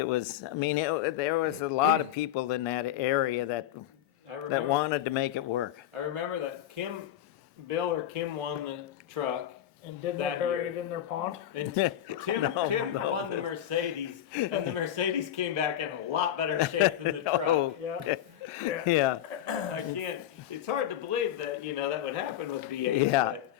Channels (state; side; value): quieter; right; 11.6 dB